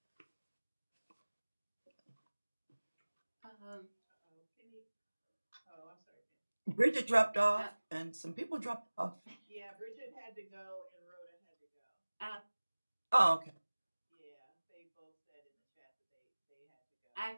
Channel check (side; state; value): both; inverted; correlation -1.00